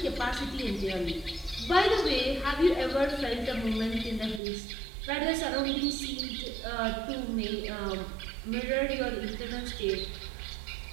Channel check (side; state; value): left; drops out; at 4.4 s